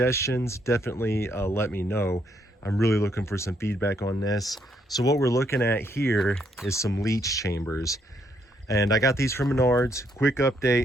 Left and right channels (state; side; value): normal; both; correlation 0.73